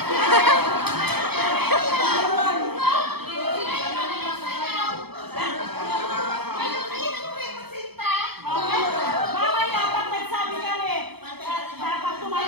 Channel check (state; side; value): late; left; 0.97 ms